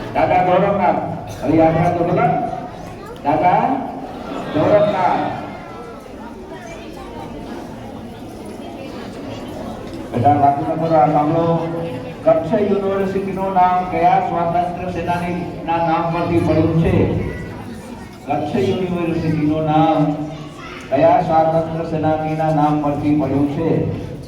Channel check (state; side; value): identical; both; correlation 1.00